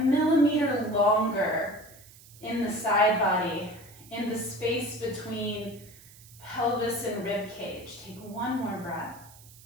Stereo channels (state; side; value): noise; right; hiss, 22 dB below the sound